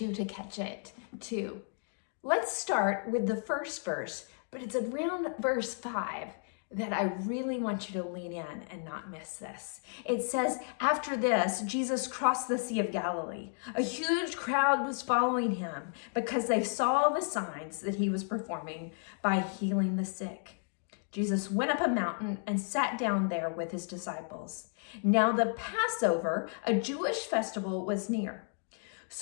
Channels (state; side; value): silent; right; 56 dB below the other